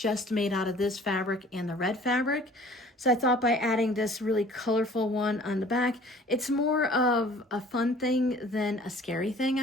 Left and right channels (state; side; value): normal; both; correlation 0.50